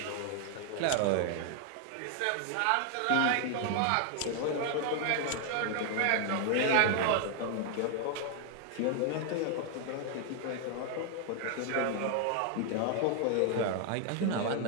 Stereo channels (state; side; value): different; both; correlation 0.00